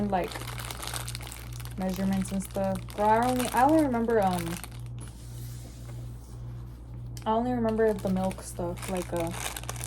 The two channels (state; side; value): identical; both; correlation 1.00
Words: like measurements and stuff? Bro, I only remember the milk stuff, like a